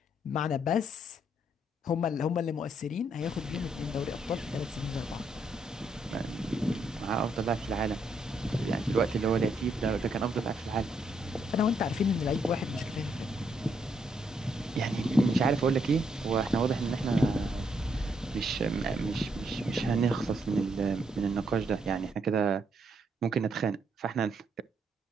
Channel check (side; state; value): both; normal; correlation 0.75